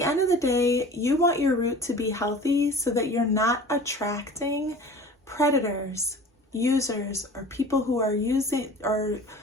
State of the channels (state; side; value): normal; both; correlation 0.41